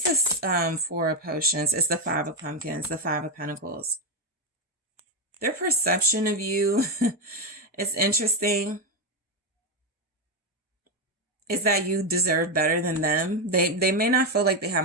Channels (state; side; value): normal; both; correlation 0.07